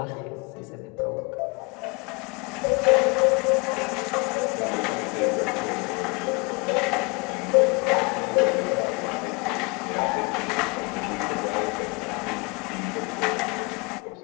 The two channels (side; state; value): right; quieter; 30.0 dB